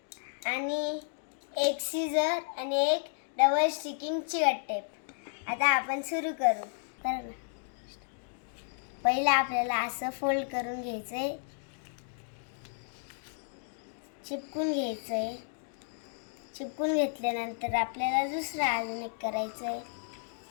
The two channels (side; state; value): right; silent; digital silence